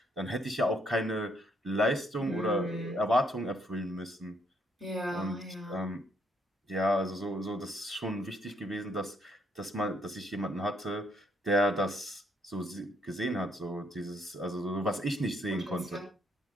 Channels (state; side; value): normal; both; correlation 0.71